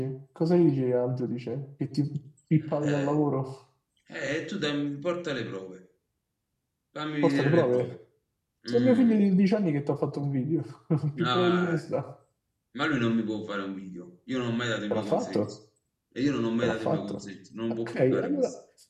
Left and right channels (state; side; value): identical; both; correlation 1.00